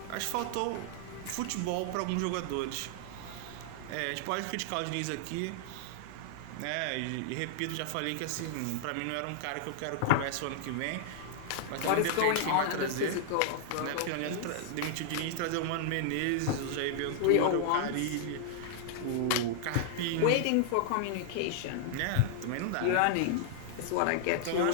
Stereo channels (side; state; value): both; different; correlation -0.01